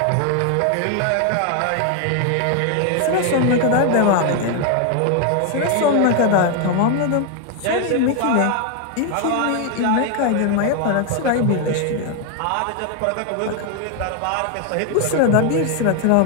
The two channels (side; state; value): both; different; correlation 0.00